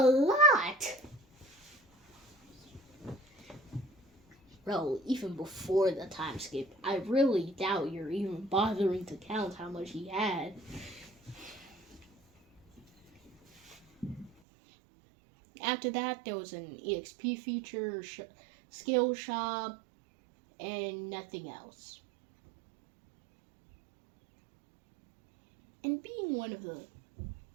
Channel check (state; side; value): drops out; left; at 14.3 s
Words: lot! Bro, even before the time skip, I really doubt you're even bothering to count how much he had. After that, there was an EXP feature, skill shop, and nothing else. And being one of the